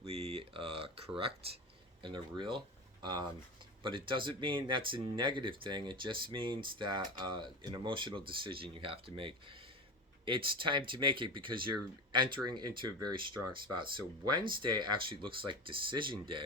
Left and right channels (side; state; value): both; normal; correlation 0.25